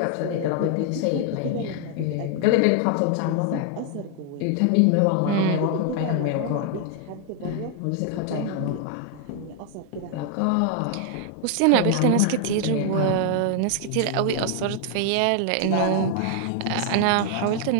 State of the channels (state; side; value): different; both; correlation 0.00